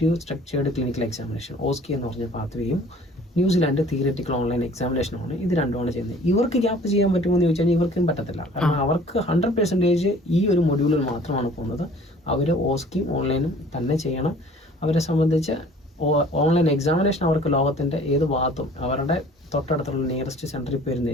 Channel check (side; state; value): both; normal; correlation 0.51